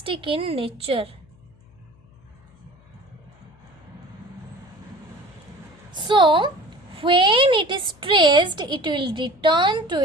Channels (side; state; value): left; noise; hum, 28 dB below the sound